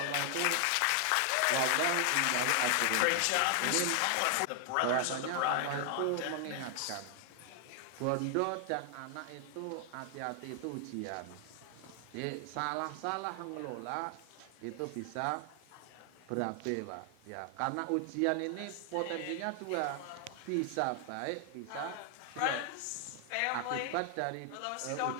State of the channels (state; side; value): different; both; correlation 0.00